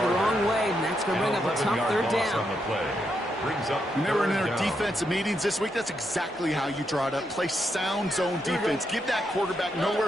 wrong way, and that's going to bring up a tough third down. Remember in our defensive meetings this week, that's exactly how you draw it up. Play sound zone defense. Give that quarterback nowhere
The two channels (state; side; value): normal; both; correlation 0.81